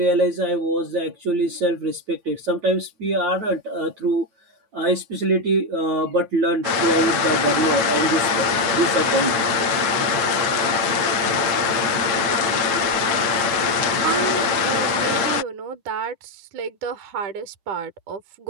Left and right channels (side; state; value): left; late; 8.9 ms